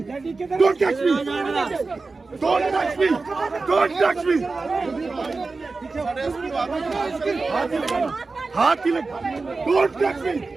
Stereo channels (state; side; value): quieter; left; 3.9 dB